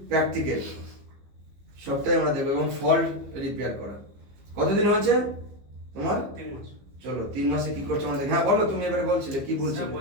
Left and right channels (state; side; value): late; left; 15 ms